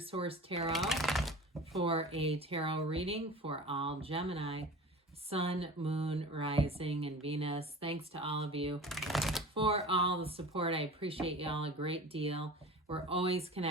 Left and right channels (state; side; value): normal; both; correlation 0.37